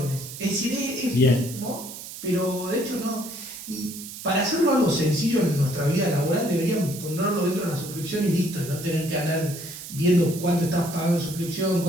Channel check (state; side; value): noise; right; hiss, 11 dB below the sound